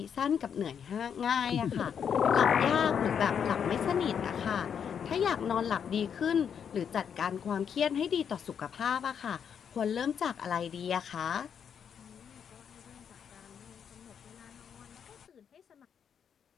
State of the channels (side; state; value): right; quieter; 7.7 dB